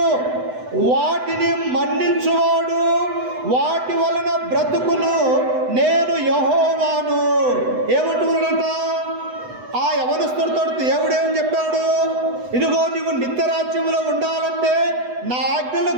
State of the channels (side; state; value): left; late; 8.0 ms